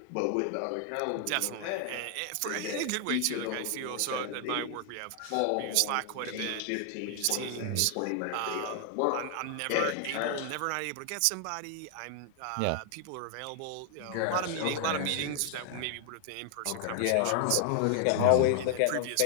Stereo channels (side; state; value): both; different; correlation 0.00